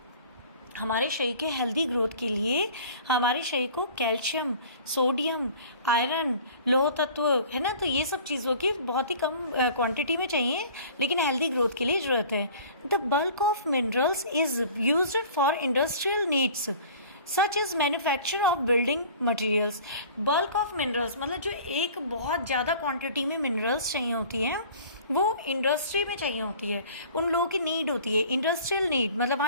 हमारे शरीर के हेल्दी ग्रोथ के लिए हमारे शरीर को कैल्शियम, सोडियम, आयरन, लोह तत्व, है ना, तो ये सब चीज़ों की बहुत ही कम क्वांटिटी में चाहिए, लेकिन हेल्दी ग्रोथ के लिए ज़रूरत है। The bulk of minerals is used for industrial needs such is manufacture of building materials. Bulk of minerals मतलब जो एक बहुत ज़्यादा क्वांटिटी में मिनरल्स चाहिए होती है वो इंडस्ट्री में चाहिए होती है, उन लोगों की नीड होती है, इंडस्ट्रियल नीड। मतलब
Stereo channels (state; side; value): inverted; both; correlation -0.46